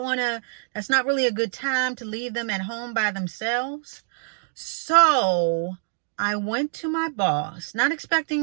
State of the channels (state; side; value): silent; left; digital silence